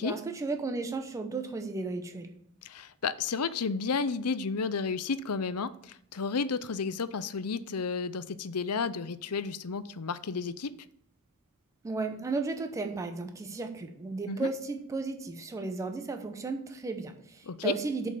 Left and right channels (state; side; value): normal; both; correlation 0.21